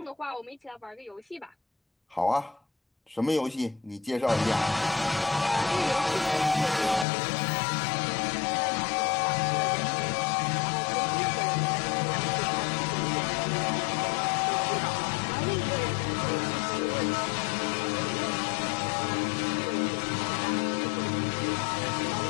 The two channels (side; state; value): right; drops out; at 7.1 s